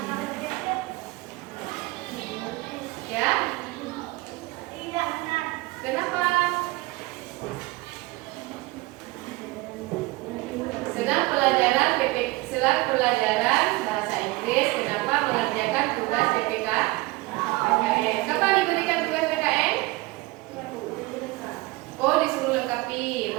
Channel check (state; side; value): quieter; left; 21.3 dB